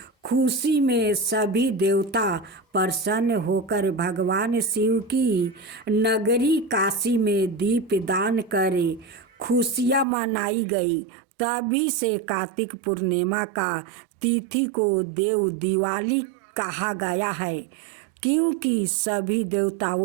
खुशी में सभी देवता प्रसन्न होकर भगवान शिव की नगरी काशी में दीपदान करे खुशियाँ मनाई गई। तभी से कार्तिक पूर्णिमा का तिथि को देव दिवाली कहा गया है, क्योंकि सभी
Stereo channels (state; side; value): drops out; left; at 10.1 s